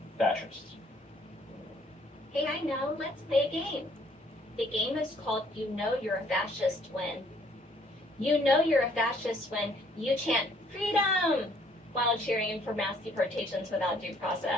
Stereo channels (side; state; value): both; normal; correlation 0.63